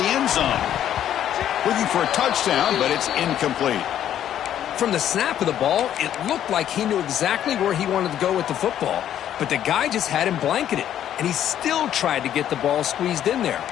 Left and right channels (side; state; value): right; quieter; 10.8 dB